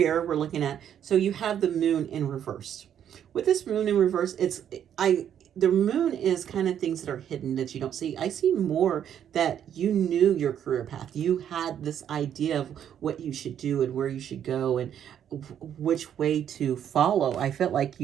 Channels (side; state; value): left; quieter; 9.5 dB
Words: we're looking at, so you have the Moon in reverse. With this Moon in reverse, the Moon is kind of things that are hidden that you don't see. I see more that you knew your career path. You had this idea of what you should do and where you should go and which way to follow. I felt like